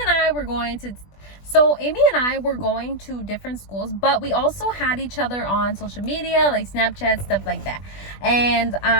and I were going to different schools, but we also had each other on social media, like Snapchat, stuff like that. And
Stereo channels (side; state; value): right; late; 20 ms